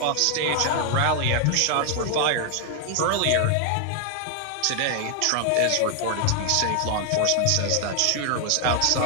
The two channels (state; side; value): different; both; correlation 0.00